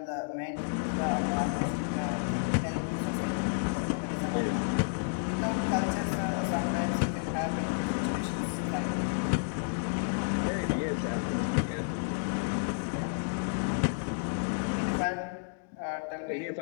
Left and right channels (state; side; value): silent; right; digital silence